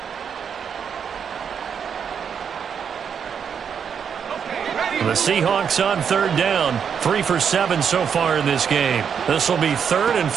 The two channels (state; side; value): quieter; left; 7.3 dB